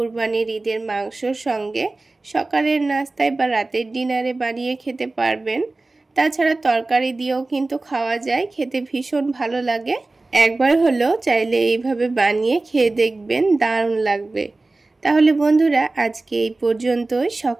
ঈদের মাংসর সঙ্গে সকালের নাস্তায় বা রাতের ডিনারে বানিয়ে খেতে পারবেন। তাছাড়া তরকারি দিয়েও কিন্তু খাওয়া যায়, খেতে ভীষণ ভালো লাগে। একবার হলেও চাইলে এইভাবে বানিয়ে খেয়ে দেখবেন, দারুণ লাগবে। তাহলে বন্ধুরা আজকে এই পর্যন্তই।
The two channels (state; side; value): quieter; left; 3.2 dB